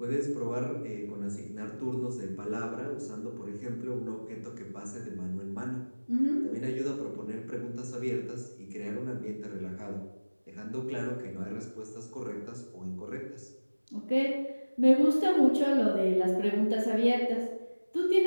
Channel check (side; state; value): both; inverted; correlation -1.00